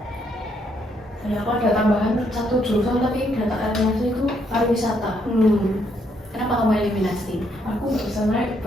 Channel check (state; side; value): normal; both; correlation 0.73